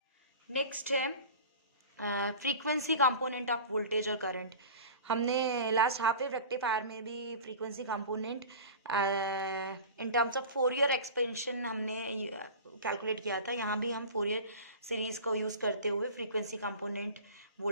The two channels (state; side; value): inverted; both; correlation -0.37